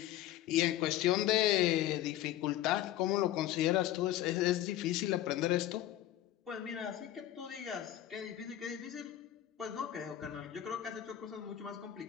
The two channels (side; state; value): right; quieter; 13.1 dB